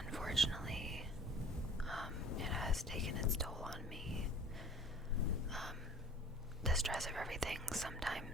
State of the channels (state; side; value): normal; both; correlation 0.48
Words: it has taken its toll on me. The stress of everything.